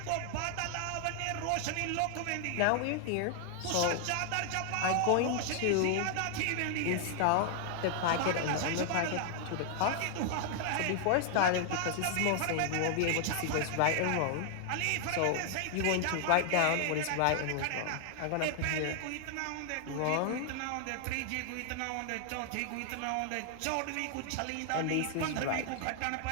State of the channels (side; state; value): both; different; correlation 0.00